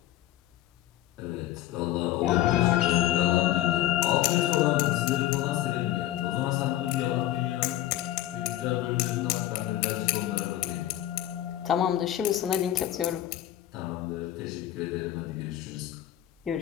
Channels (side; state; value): right; quieter; 13.4 dB